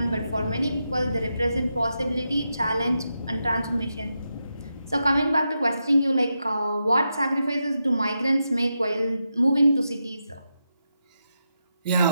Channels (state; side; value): inverted; both; correlation -0.86